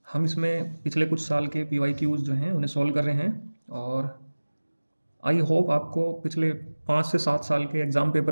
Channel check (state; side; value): inverted; both; correlation -1.00